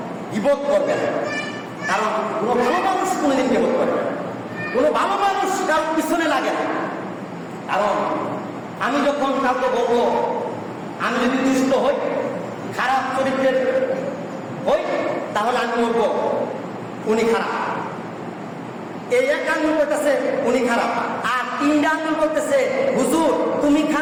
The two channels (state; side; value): identical; both; correlation 1.00